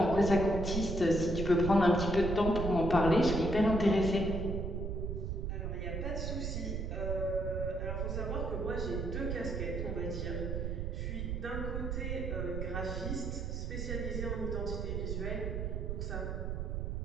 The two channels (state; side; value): noise; right; rumble, 2 dB below the sound